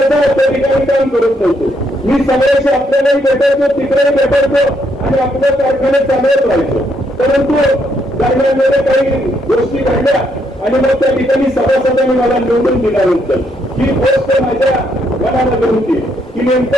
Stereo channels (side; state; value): both; normal; correlation 0.74